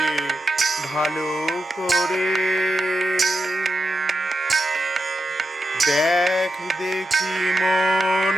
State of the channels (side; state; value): both; normal; correlation 0.88